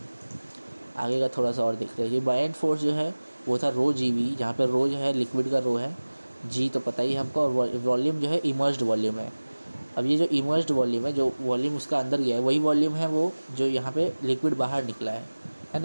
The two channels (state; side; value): inverted; both; correlation -1.00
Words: आगे का थोड़ा सा और देखते हैं। ये बायएंट फोर्स जो है वो था ρgv, जहाँ पे रो जो है लिक्विड का रो है, जी तो पता ही हमको, और वॉल्यूम जो है इमर्ज्ड वॉल्यूम है। अब ये जो इमर्ज्ड वॉल्यूम है, जो वॉल्यूम उसका अंदर गया है वही वॉल्यूम है वो जो यहाँ पे लिक्विड बाहर निकला है